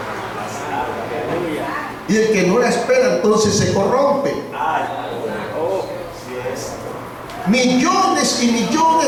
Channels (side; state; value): both; identical; correlation 1.00